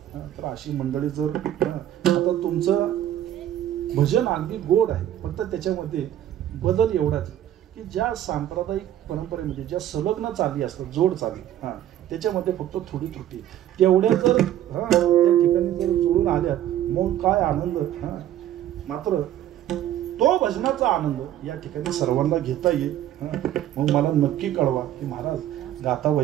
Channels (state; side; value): quieter; left; 11.9 dB